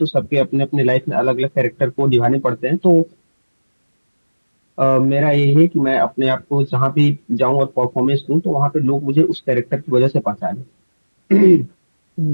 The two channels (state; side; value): inverted; both; correlation -1.00